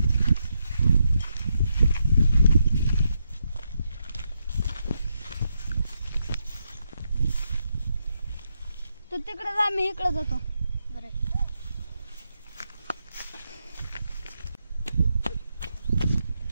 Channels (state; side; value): inverted; both; correlation -0.82